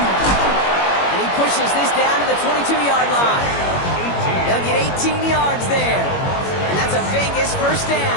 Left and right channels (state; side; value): late; right; 21 ms